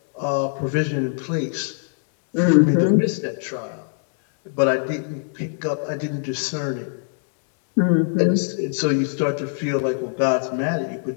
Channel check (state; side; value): silent; right; digital silence